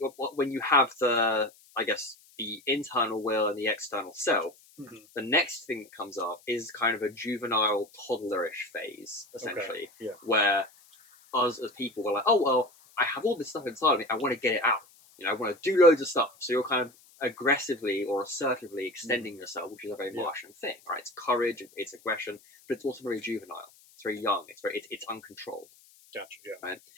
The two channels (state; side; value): noise; left; hiss, 27 dB below the sound